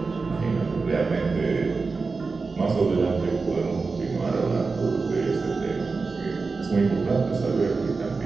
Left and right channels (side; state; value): left; quieter; 4.3 dB